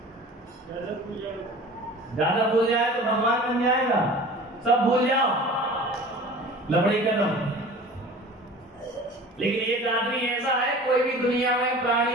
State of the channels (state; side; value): normal; both; correlation 0.41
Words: ज्यादा भूल जाए तो भगवान बन जाएगा। सब भूल जाओ, लबड़ी कदम। लेकिन एक आदमी ऐसा है, कोई भी दुनिया में